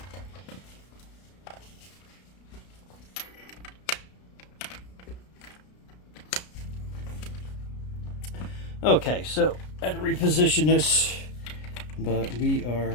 Okay, so I had to reposition this, but we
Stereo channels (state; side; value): late; right; 33 ms